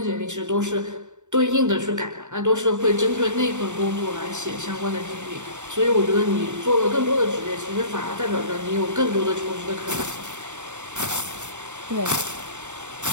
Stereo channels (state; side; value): late; left; 0.84 ms